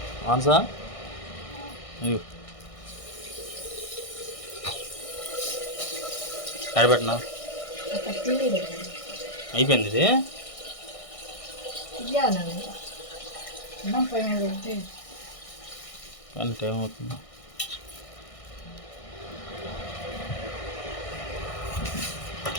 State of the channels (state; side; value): late; right; 1.6 ms